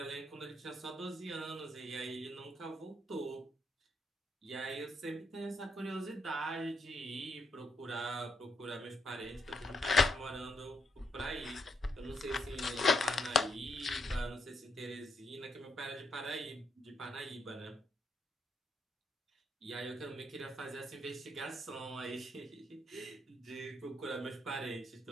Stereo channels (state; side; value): normal; both; correlation 0.76